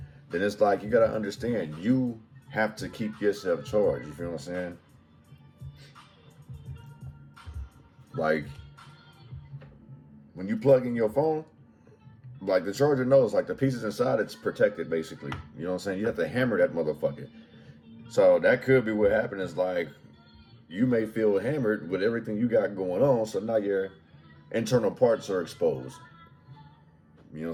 then it's like you got to understand, you have to keep yourself charged. You feel what I'm saying? Like, when you plug in your phone, like the charger knows, like the pieces inside, it's protected basically. You know what I'm saying? You have to hammer that motherfucker. So that could be what happened is like, you may feel hammered with everything you got going on, so now your internal parts are exposed. You know what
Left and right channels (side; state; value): both; identical; correlation 1.00